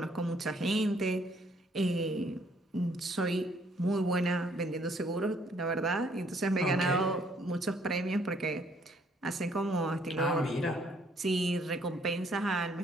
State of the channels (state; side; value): normal; both; correlation 0.65